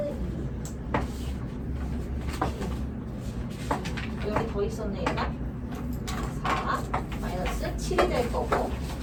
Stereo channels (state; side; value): identical; both; correlation 1.00